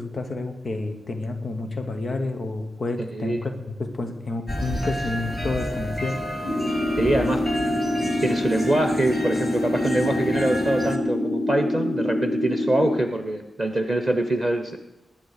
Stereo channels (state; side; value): normal; both; correlation 0.90